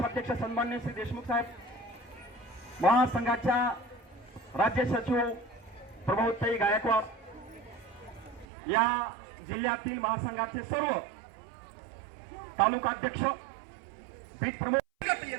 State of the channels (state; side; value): drops out; left; at 8.5 s